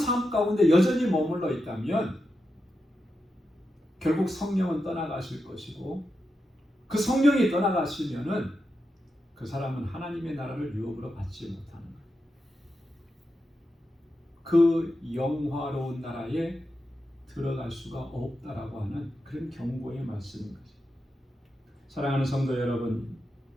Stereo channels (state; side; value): normal; both; correlation 0.88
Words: 가운데 여전히 머물러 있다면 결국 성령은 떠나가실 것이고, 그 성령이 떠나가시면은 그 사람은 하나님의 나라를 유업으로 받지 못하는 거예요. 그 영화로운 나라에 들어갈 수가 없다라고 하는 그런 경고의 말씀인 거죠. 사랑하는 성도 여러분,